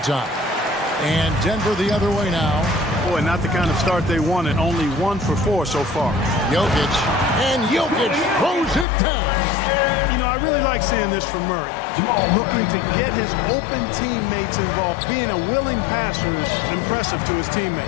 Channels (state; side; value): drops out; right; at 8.8 s